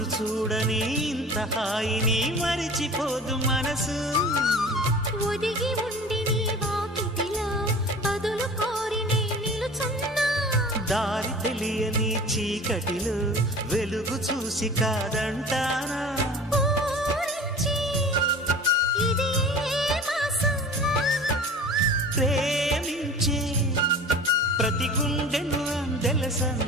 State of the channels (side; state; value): both; normal; correlation 0.40